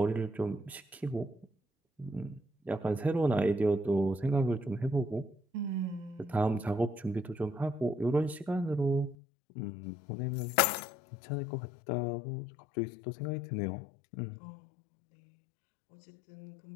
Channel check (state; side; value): drops out; right; at 9.2 s